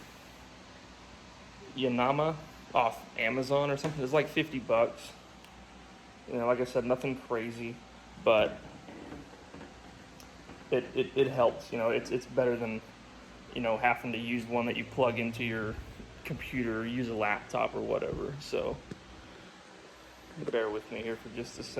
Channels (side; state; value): both; identical; correlation 1.00